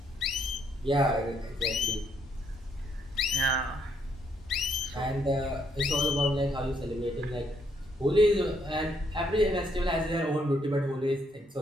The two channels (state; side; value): normal; both; correlation 0.72